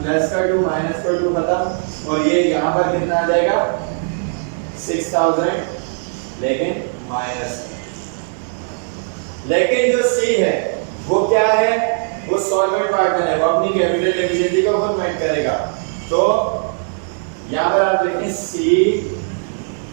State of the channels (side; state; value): left; silent; digital silence